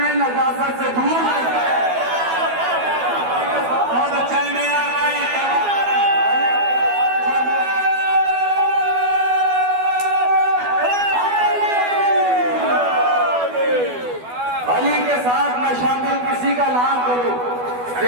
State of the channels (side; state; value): left; late; 12 ms